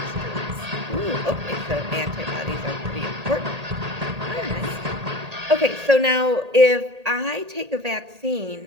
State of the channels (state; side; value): late; left; 1.8 ms